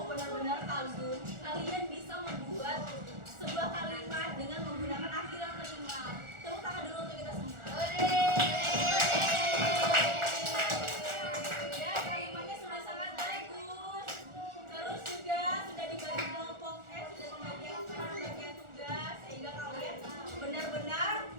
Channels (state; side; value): late; left; 1.4 ms